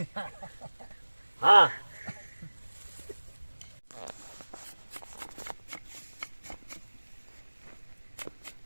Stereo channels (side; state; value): both; inverted; correlation -1.00